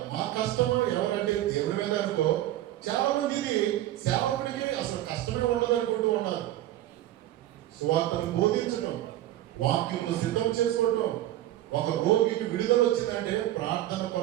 మా కష్టము ఎవరంటే దేవుడి మీద అనుకో. చాలా మంది ఇది సేవకుడికి అసలు కష్టమే ఉండదు అనుకుంటూ ఉన్నారు. సువార్తను బోధించడం, వాక్యమును సిద్ధం చేసుకోవటం. ఒక రోగికి విడుదల వచ్చిందంటే ప్రార్థన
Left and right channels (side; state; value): left; quieter; 14.1 dB